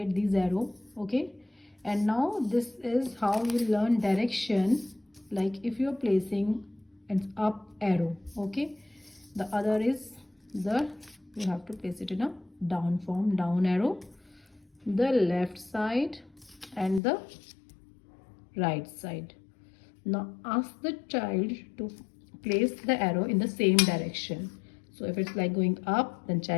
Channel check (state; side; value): drops out; right; at 17.0 s